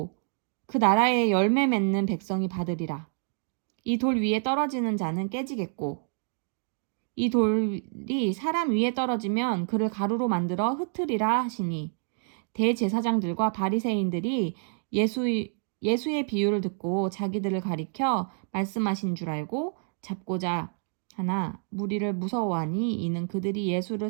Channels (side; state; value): left; silent; 59 dB below the other